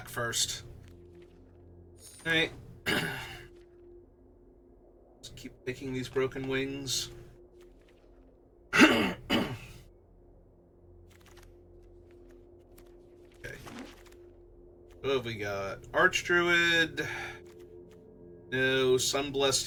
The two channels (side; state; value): both; identical; correlation 1.00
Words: first. Alright. Let's keep picking these broken wings. What have we got? Archdruid. No. Sunblessed